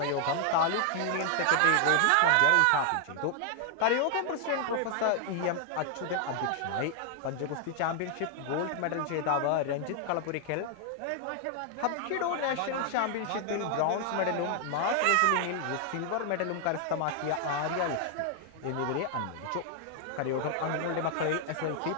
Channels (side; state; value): both; different; correlation 0.00